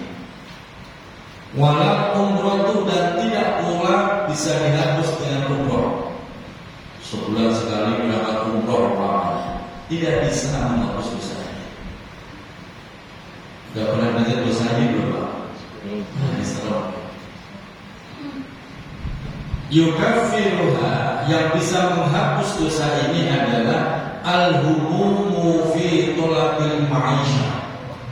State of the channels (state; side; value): identical; both; correlation 1.00